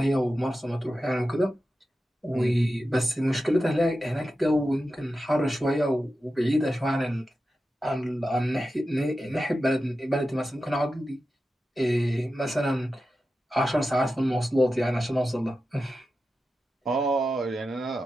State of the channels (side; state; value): both; normal; correlation 0.92